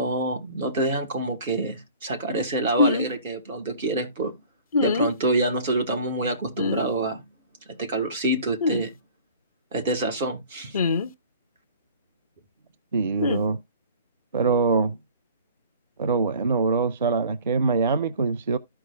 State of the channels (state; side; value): inverted; both; correlation -0.47